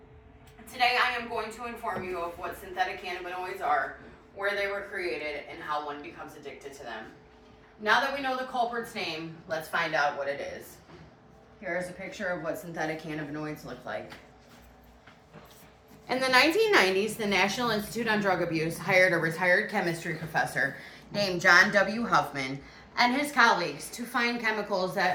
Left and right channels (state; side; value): identical; both; correlation 1.00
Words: Today, I am going to inform you of what synthetic cannabinoids are, where they were created, and how one becomes addicted to them. Now that we know the culprit's name, let's find out what it is. Here is a picture of what synthetic cannabinoids look like. In the 1990s, the National Institute on Drug Abuse hired a retired chemistry professor named John W. Huffman and his colleagues to find chemicals